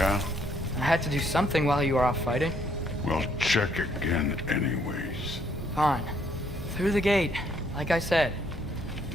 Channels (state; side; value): normal; both; correlation 0.69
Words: I had to do something while you were off fighting. Well, check again anyways. Fine. Through the gate, like I said.